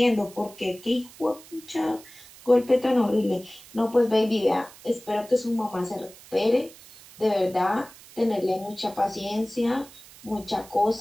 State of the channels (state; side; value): noise; right; hiss, 21 dB below the sound